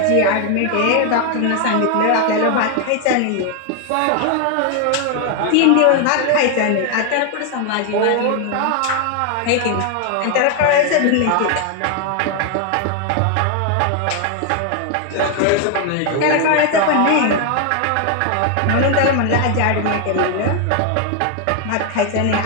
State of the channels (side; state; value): both; different; correlation 0.00